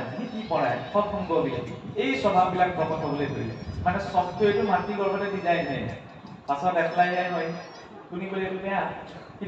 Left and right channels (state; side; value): identical; both; correlation 1.00